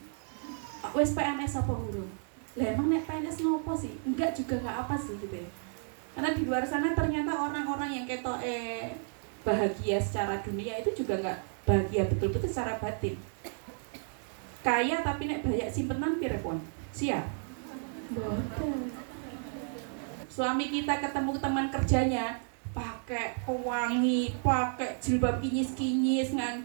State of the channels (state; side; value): silent; left; 56 dB below the other